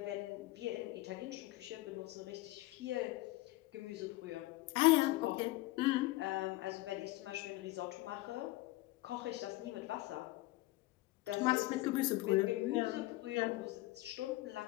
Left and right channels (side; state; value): right; quieter; 19.2 dB